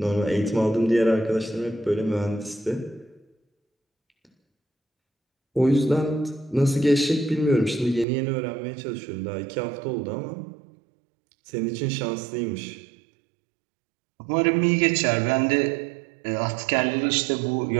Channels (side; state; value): left; drops out; at 8.1 s